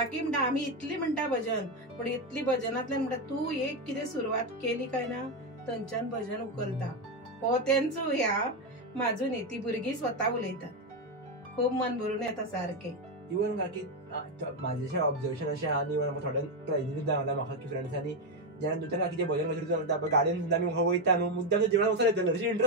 म्हणटा आमी इतली म्हणटा भजन पण इतली भजनांतल्यान म्हणटा तू एक कितें सुरवात केली काय ना थंयच्यान भजन उखलता. हो तेंचो ह्या म्हाजो न्ही ती भुरगीं स्वता उलयतात. खूब मन भरून येता सारकें. इवन काकी माझे ऑब्झर्वेशन अशें आहा इवन म्हाका थोड्यान ट्रेनिंग जावं म्हाका की फ्रेंड्सांनी जेन्ना दुसऱ्या काकीचे भजन वचून चलता पळय गाडयेन सुद्दां आमी वयता न्हू मुद्दाम जेवणाक वचून येतले अशी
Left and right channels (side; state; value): both; normal; correlation 0.08